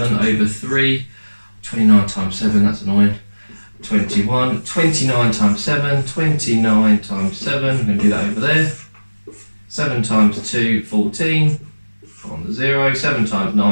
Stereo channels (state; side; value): inverted; both; correlation -1.00